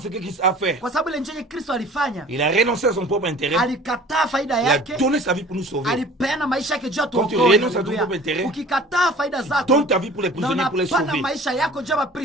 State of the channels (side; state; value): both; normal; correlation 0.46